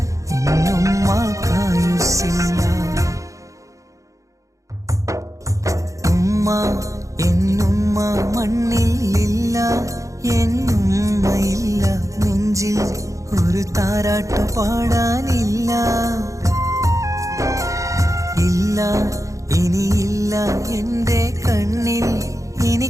എന്നുമ്മ കായുസ്സില്ല ഉമ്മ എന്നുമ്മ മണ്ണിലില്ല എന്നുമ്മയില്ല നെഞ്ചിൽ ഒരു താരാട്ടു പാടാനില്ല ഇല്ല ഇനിയില്ല എൻ്റെ കണ്ണിൽ ഇനി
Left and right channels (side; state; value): left; late; 0.15 ms